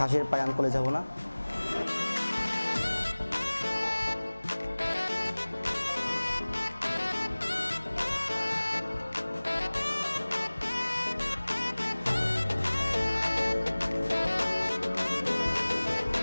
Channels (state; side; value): inverted; both; correlation -1.00